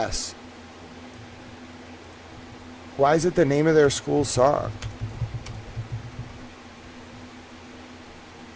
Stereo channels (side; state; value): both; identical; correlation 1.00